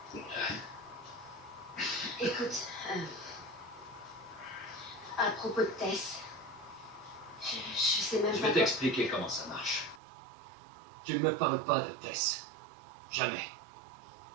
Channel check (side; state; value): left; drops out; at 10.0 s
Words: Écoute, à propos de Tess, je sais même Je pas vais quoi. t'expliquer comment ça marche. Tu ne me parles pas de Tess. Jamais.